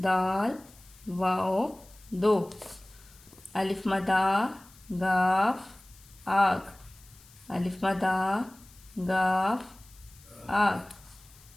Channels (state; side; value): noise; left; hiss, 25 dB below the sound